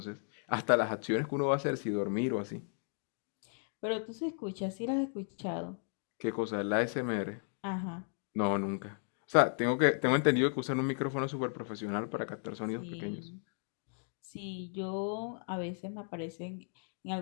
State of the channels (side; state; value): right; silent; 54 dB below the other